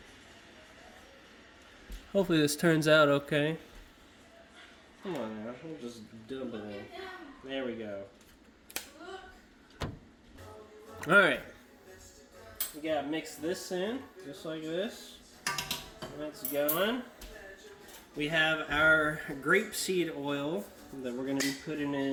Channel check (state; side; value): identical; both; correlation 1.00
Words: Hopefully this turns out okay. Come on now, we'll just dump it in. There we go. Alright. We gotta mix this in, just like this. That's going. We have our grapeseed oil that we're gonna be putting